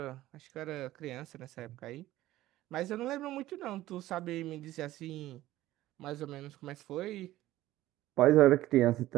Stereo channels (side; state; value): left; quieter; 15.6 dB